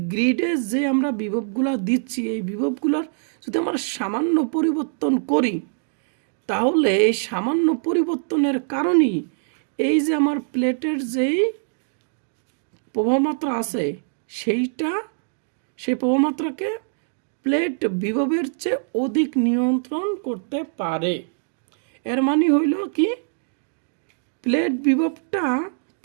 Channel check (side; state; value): left; silent; digital silence